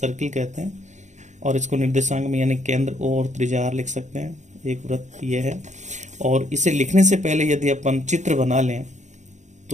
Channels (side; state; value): left; late; 0.34 ms